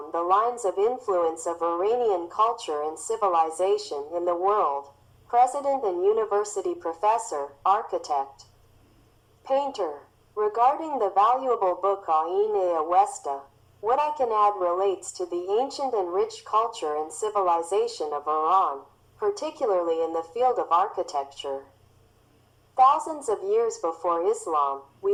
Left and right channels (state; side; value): identical; both; correlation 1.00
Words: The Lines of Influence of Iranian Culture and Civilization in the World, President and University Professor, Architect, Painter. Regarding the valuable book Années Awesta, what I can add relates to the ancient and rich culture and civilization of Iran, particularly in the field of architecture. Thousands of years before Islam,